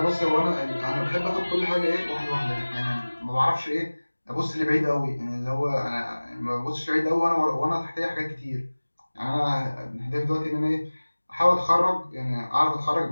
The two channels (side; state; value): both; inverted; correlation -1.00